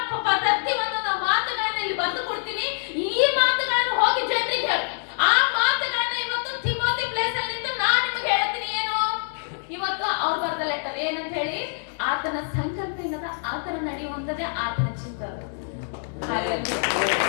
ಪ್ರತಿಯೊಂದು ಮಾತುಗಳನ್ನ ಇಲ್ಲಿ ಬರೆದು ಕೊಡ್ತೀನಿ. ಈ ಮಾತುಗಳನ್ನು ಹೋಗಿ ಜನರಿಗೆ ಹೇಳು. ಆ ಮಾತುಗಳನ್ನ ಇವತ್ತು ತಿಮೋತಿ ಪ್ಲೇಸ್ ಅಲ್ಲಿ ನಿಂತು ನಾನು ನಿಮಗೆ ಹೇಳ್ತೀನಿ. ಏನು ಇವತ್ತು ಅವ್ರು ಬರೆದ ಲೆಟರ್ ಏನಂತ ಹೇಳಿ? ಆತನ ಸಂಕಲ್ಪ ಏನದ? ಆತನ ನಡೆಯುವಂತದೇ ಆತನ ಚಿತ್ತ.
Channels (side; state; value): right; silent; digital silence